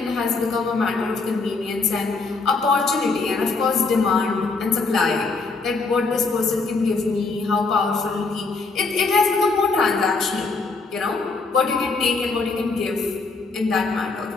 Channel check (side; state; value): right; quieter; 4.0 dB